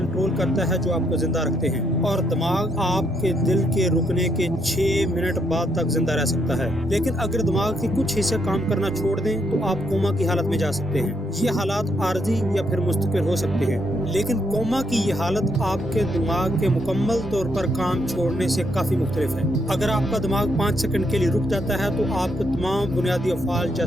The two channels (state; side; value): normal; both; correlation 0.75